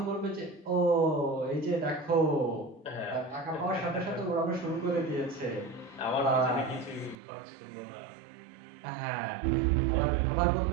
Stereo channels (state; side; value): drops out; left; at 7.2 s